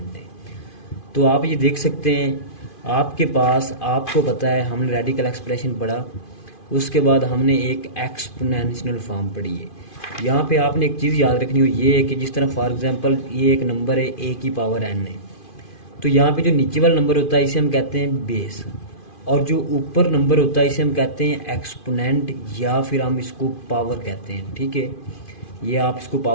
है। तो आप ये देख सकते हैं आपके पास, आपको पता है हमने रेडिकल एक्सप्रेशन पढ़ा, उसके बाद हमने एक एक्सपोनेंशियल फॉर्म पढ़ी है। यहाँ पे आपने एक चीज़ याद रखनी हो, ये है कि जिस तरह फॉर एग्जांपल ये एक नंबर है a की पावर n है, तो यहाँ पे जो नीचे वाला नंबर होता है इसे हम कहते हैं बेस, और जो ऊपर नंबर होता है इसे हम कहते हैं एक्सपोनेंट या फिर हम इसको पावर कहते हैं। ठीक है, ये आप इसको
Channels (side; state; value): right; late; 2.5 ms